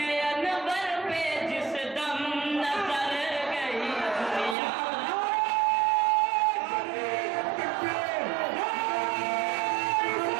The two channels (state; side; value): drops out; left; at 4.5 s